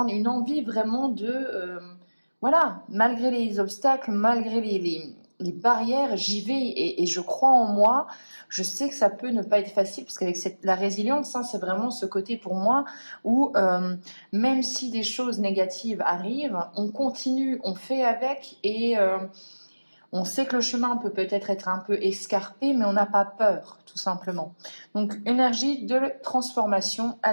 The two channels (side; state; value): both; inverted; correlation -1.00